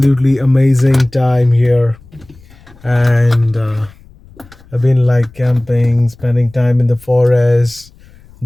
amazing time here. And I've been like camping, spending time in the forest,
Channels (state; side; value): noise; left; rumble, 26 dB below the sound